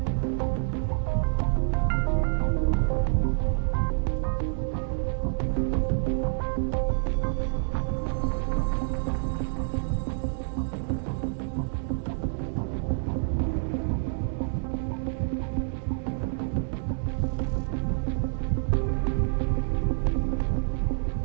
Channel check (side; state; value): left; silent; digital silence